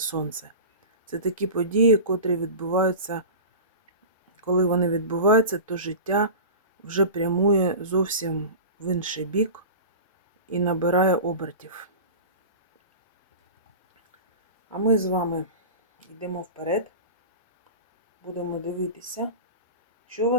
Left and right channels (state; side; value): inverted; both; correlation -0.32